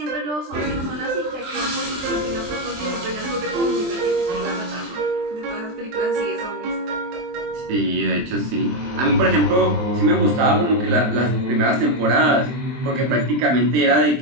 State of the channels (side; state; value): left; late; 23 ms